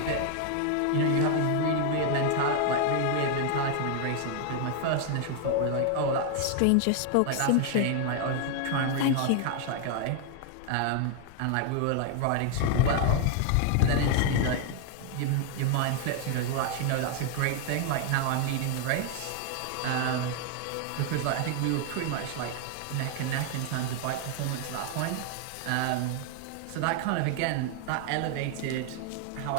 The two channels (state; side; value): different; both; correlation 0.00